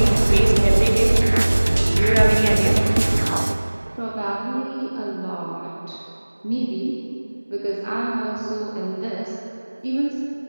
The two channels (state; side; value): inverted; both; correlation -1.00